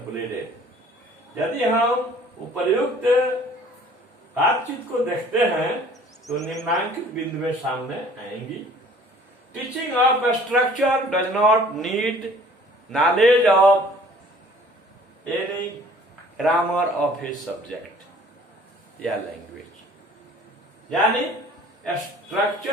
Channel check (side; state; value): both; normal; correlation 0.53